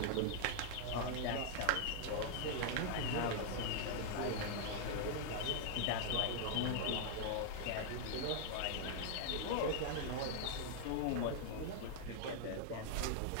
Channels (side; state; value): both; different; correlation 0.00